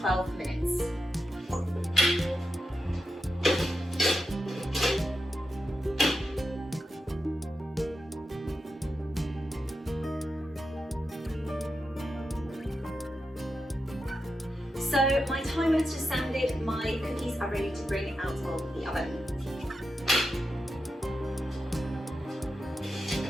minutes. So my timer has just sounded, my cookies are ready to bring out of the oven.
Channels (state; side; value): normal; both; correlation 0.88